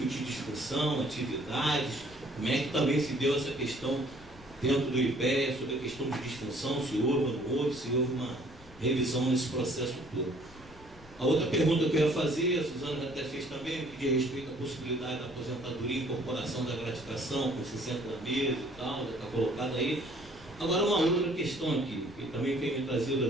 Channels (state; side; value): noise; left; rumble, 21 dB below the sound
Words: discussão, atividades, como é que também se deu essa questão dentro do IPEA, sobre a questão de disfunção, se houve ou não houve, se houve uma revisão nesse processo todo. A outra pergunta que eu ia fazer, a Suzana até fez também, que diz respeito à possibilidade da aposentadoria e incorporação da gratificação com 60 meses e tal, já está colocada aí. Agora uma outra questão aqui, que também tem me trazido